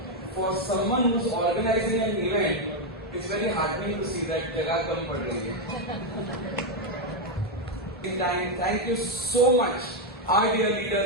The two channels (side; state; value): both; normal; correlation 0.03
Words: for someone who's organizing an event, it's very heartening to see that jagah kam pad rahi hai. Thank you so much, our dear